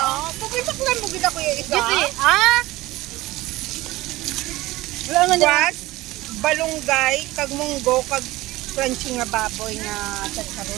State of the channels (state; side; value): quieter; left; 18.6 dB